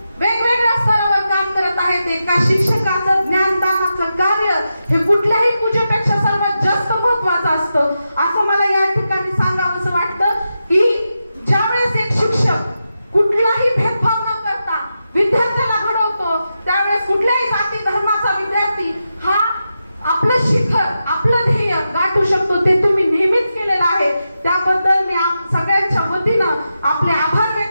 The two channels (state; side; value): inverted; both; correlation -0.89